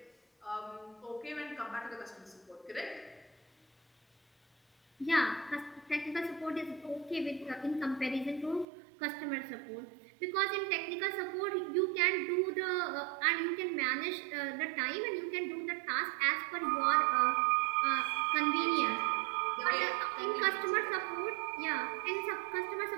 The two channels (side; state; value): left; drops out; at 8.7 s